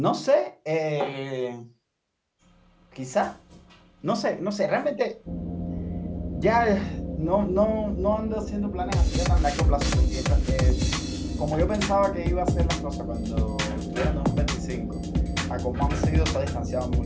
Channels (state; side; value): identical; both; correlation 1.00